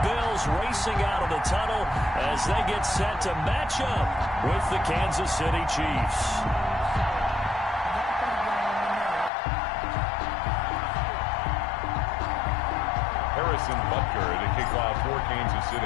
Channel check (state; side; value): drops out; right; at 9.3 s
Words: racing out of the tunnel as they get set to match up with the Kansas City Chiefs. Harrison Butker to kick off for Kansas